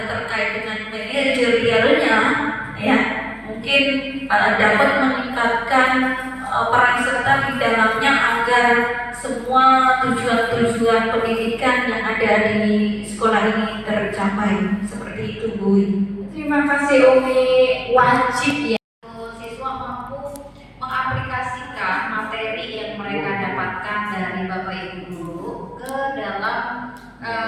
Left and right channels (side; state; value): both; identical; correlation 1.00